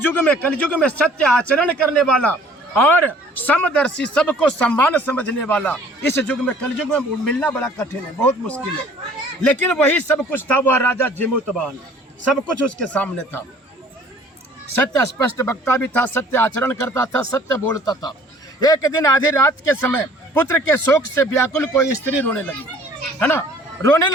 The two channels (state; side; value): normal; both; correlation 0.53